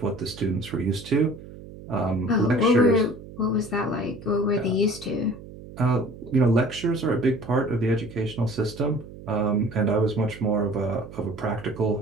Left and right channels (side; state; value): right; noise; hum, 16 dB below the sound